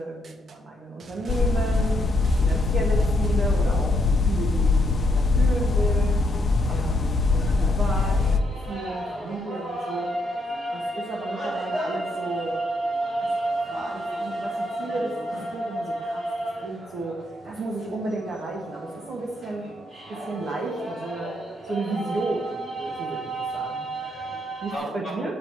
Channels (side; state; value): both; normal; correlation 0.76